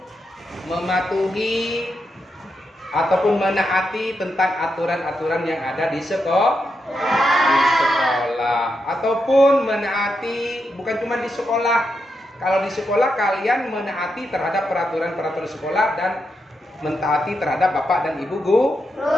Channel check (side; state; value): both; normal; correlation 0.84